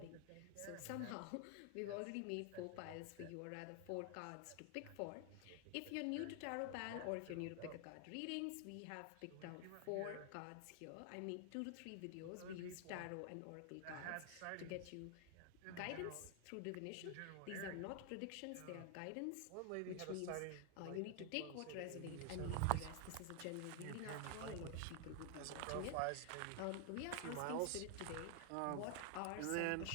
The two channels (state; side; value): different; both; correlation 0.00